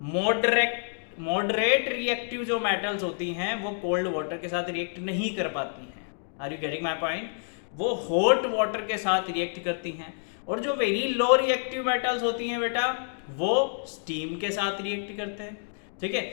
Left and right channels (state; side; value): silent; right; digital silence